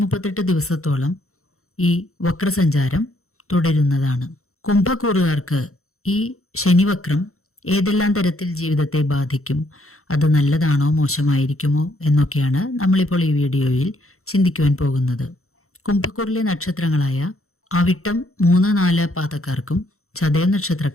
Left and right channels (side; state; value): right; late; 0.63 ms